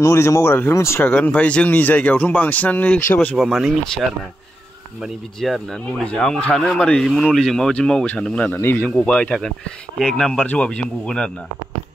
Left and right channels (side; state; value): both; normal; correlation 0.87